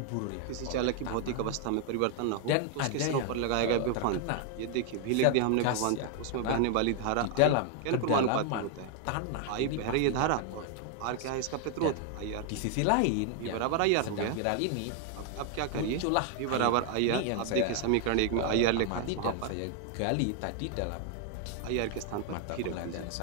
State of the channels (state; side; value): different; both; correlation 0.00